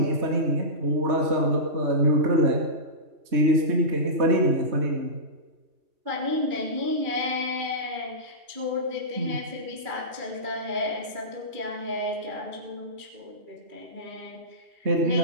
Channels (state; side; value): late; left; 2.4 ms